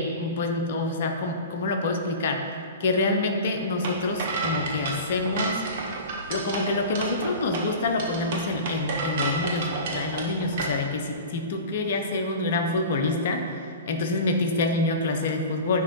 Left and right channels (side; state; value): both; inverted; correlation -0.34